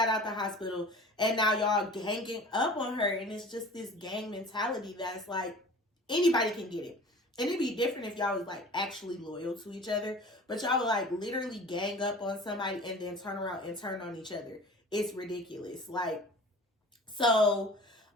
out the hospital, and now y'all ganging up on her. And it's just this gang mentality that's like, anybody can get it. And it'd be different if y'all was like actually loyal to each other. But y'all would like literally gang up on somebody and then turn around and turn on each other. It's ridiculous. Like, so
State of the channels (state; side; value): normal; both; correlation 0.42